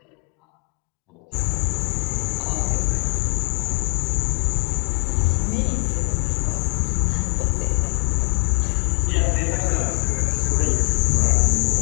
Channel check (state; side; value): quieter; right; 38.1 dB